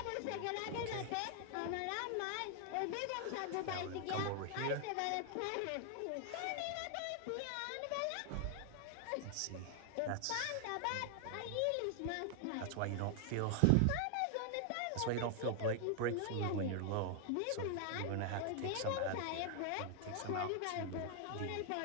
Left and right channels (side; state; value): both; different; correlation 0.00